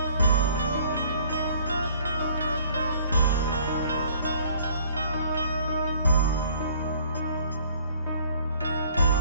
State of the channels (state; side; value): inverted; both; correlation -0.57